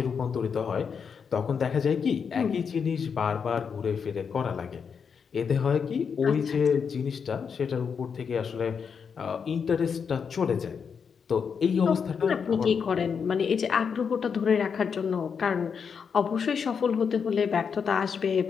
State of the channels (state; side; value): quieter; right; 6.4 dB